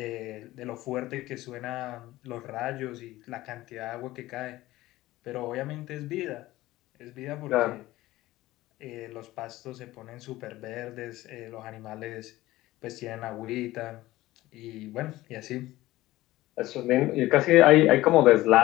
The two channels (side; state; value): right; quieter; 17.2 dB